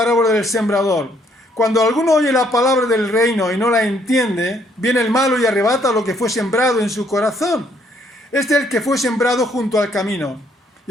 del sembrador. Cuando alguno oye la palabra del reino y no la entiende, viene el malo y arrebata lo que fue sembrado en su corazón. Este es el que fue sembrado junto al camino.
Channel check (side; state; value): both; normal; correlation 0.68